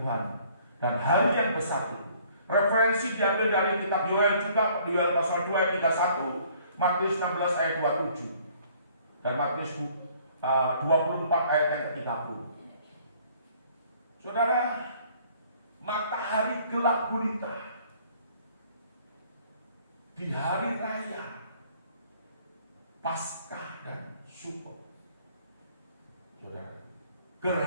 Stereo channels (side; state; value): both; inverted; correlation -0.59